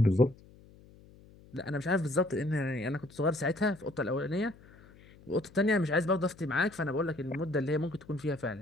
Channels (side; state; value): left; noise; hum, 24 dB below the sound